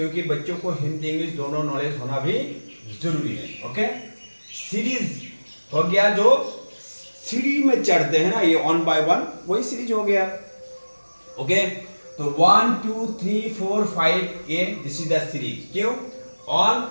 बच्चों को हिंदी इंग्लिश दोनों नॉलेज होना भी जरूरी है। ओके, सीरीज हो गया, जो सीढ़ी में चढ़ते हैं ना, ये 1 by 1 वही सीरीज हो गया। ओके, तो 1 2 3 4 5 ये दिस इज द सीरीज। क्यों? 1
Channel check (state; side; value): inverted; both; correlation -1.00